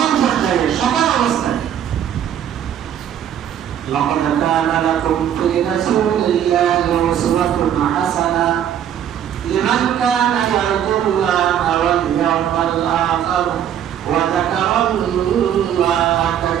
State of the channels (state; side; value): quieter; left; 9.8 dB